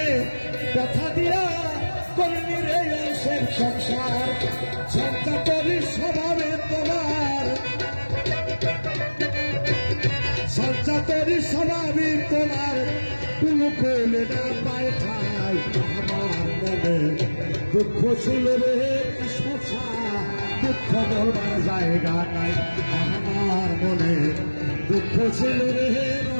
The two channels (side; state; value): both; inverted; correlation -1.00